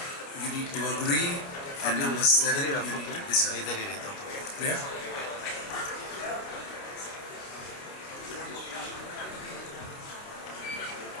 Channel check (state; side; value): late; right; 29 ms